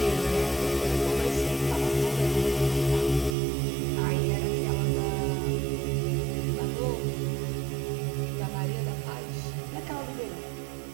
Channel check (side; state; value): left; drops out; at 3.4 s